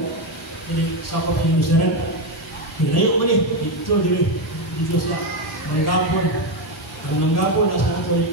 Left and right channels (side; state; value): both; normal; correlation 0.09